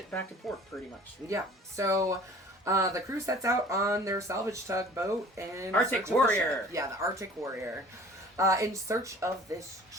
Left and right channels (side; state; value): both; normal; correlation 0.48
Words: back to port, pretty much. Yeah. So the crew sets out on their salvage tugboat and Arctic Warrior. The Arctic Warrior, in search of this